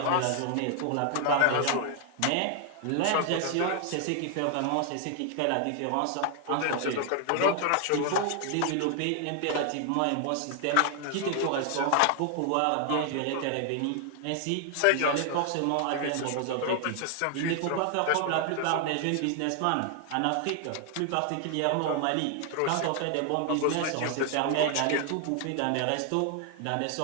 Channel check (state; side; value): different; both; correlation 0.00